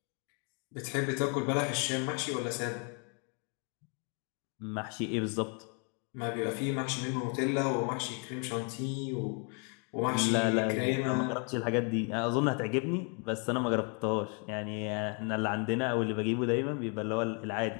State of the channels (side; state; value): right; quieter; 36.8 dB